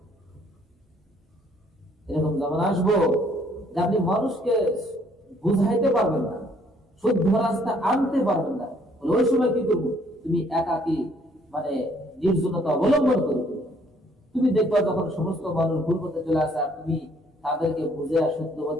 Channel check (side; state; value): both; normal; correlation 0.64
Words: এরকম যেমন আসবো যে আপনি মানুষকে বুঝাইতে পারবেন না, শুদ্ধ রাস্তা আনতে পারবেন না, ওই সময় কি করবো? তুমি একাকি মানে নির্জনতা অবলম্বন করবে। তুমি দেখবা যখন সমস্ত মানুষ ভুল পথে চলে আসে আর তুমি তাদেরকে বুঝে শুদ্ধ